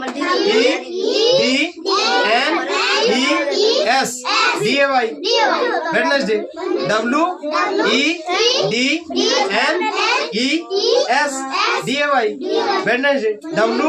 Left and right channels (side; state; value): both; identical; correlation 1.00